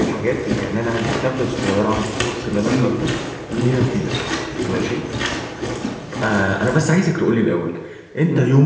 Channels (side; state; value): both; identical; correlation 1.00